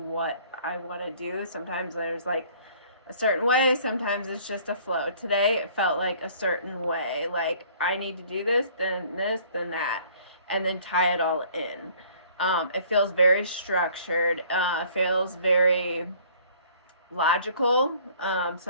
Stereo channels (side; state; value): both; inverted; correlation -0.55